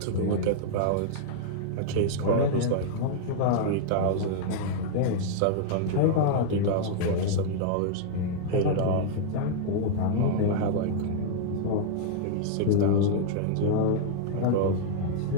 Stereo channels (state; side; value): different; both; correlation -0.01